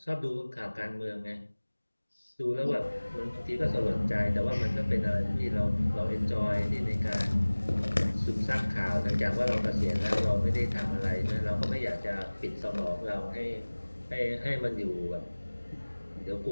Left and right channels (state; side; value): inverted; both; correlation -1.00